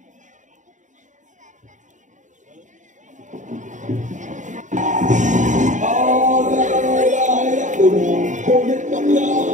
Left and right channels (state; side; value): late; left; 0.36 ms